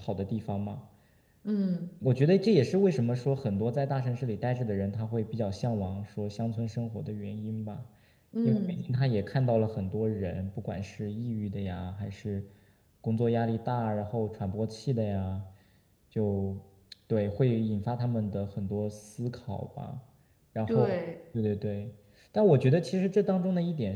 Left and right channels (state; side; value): identical; both; correlation 1.00